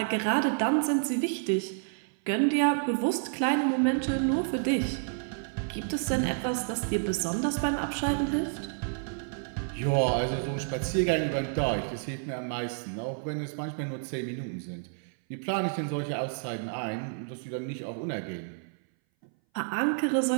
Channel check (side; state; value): left; silent; 58 dB below the other